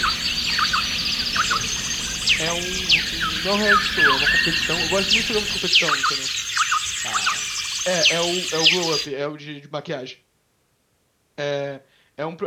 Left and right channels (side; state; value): both; identical; correlation 1.00